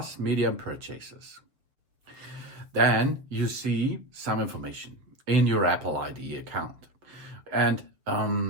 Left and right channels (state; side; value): late; left; 7.1 ms